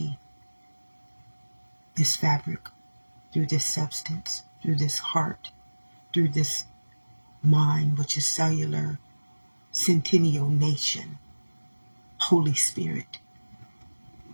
this fabric, through this substance, through this heart, through this mind, which is cellular, centennial nation, Holy Spirit,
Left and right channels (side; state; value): both; inverted; correlation -1.00